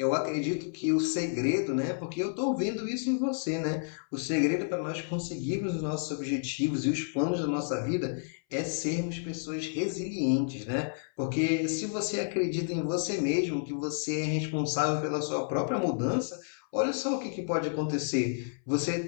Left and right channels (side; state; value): right; silent; 58 dB below the other